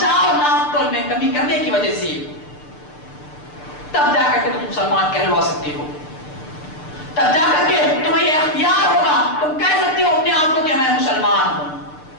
ناپ تول میں کمی کرنے کی وجہ سے, تب جا کر کے تم مسلمان کہلوا سکتے ہو. تب جا کر کے تمہیں یہ اختیار ہوگا, تم کہہ سکتے ہو اپنے آپ کو کہ میں مسلمان ہوں.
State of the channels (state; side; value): late; right; 6.7 ms